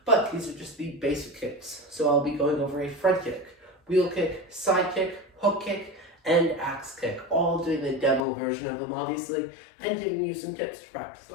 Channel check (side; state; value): right; drops out; at 8.2 s